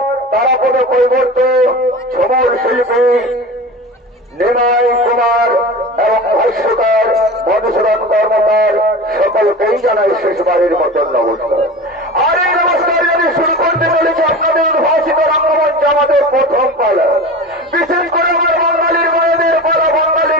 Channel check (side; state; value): both; normal; correlation 0.33